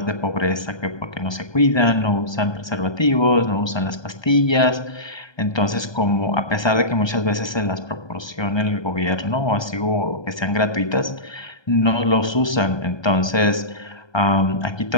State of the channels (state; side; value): late; right; 1.2 ms